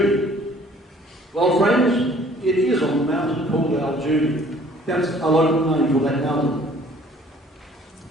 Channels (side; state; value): both; normal; correlation 0.56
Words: Well, friends, it is on the mountain called Al-Judi. That's a local name for that mountain.